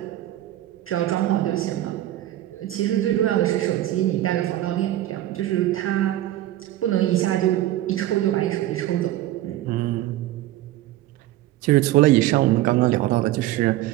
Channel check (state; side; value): quieter; left; 14.4 dB